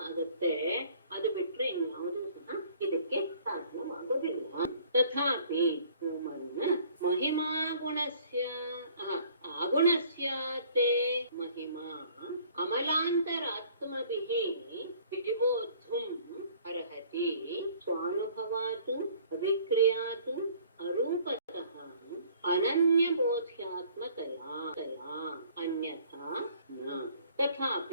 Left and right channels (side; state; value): both; inverted; correlation -0.56